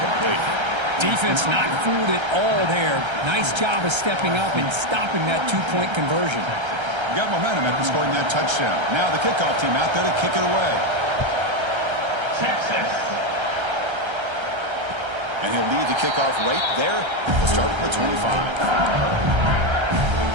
Defense not fooled at all there. Nice job of stepping up and stopping that 2-point conversion. Got momentum after scoring that touchdown. Now the kickoff team out there to kick it away. Texas. And he'll lead the kickoff right there. We'll start at the 25.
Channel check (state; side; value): late; left; 1.3 ms